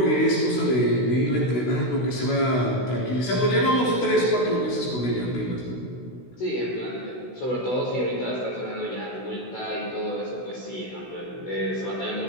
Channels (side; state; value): right; late; 16 ms